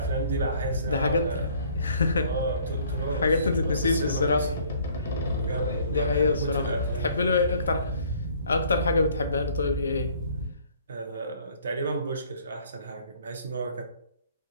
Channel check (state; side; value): inverted; both; correlation -0.58